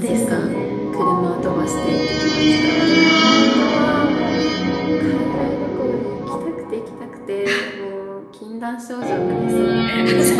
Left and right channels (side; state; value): both; identical; correlation 1.00